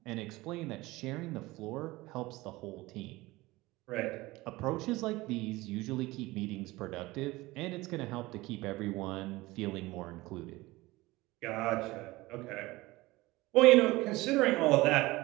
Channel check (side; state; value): left; quieter; 20.1 dB